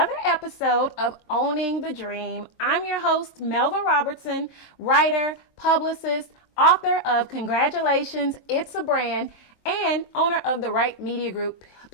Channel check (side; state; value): right; late; 22 ms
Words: episode of Owning the Dream. I'm your host, Melva Robertson, writer, publicist, author of Congratulations, It's a Brand, and owner of the Right Media Group